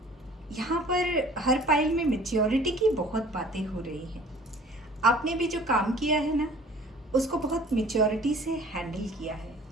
यहाँ पर हर पाइल में मैच्योरिटी की बहुत बातें हो रही हैं। आपने भी जो काम किया है ना, उसको बहुत मैच्योरिटी से हैंडल किया है।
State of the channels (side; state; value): both; normal; correlation 0.49